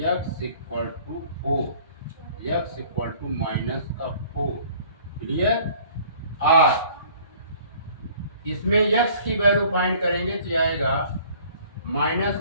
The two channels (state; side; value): inverted; both; correlation -0.53